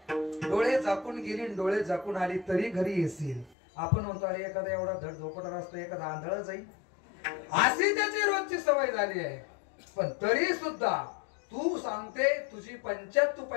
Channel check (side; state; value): right; drops out; at 3.6 s